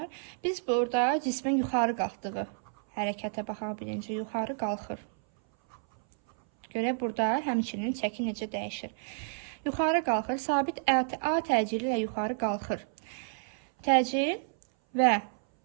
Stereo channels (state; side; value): silent; left; 58 dB below the other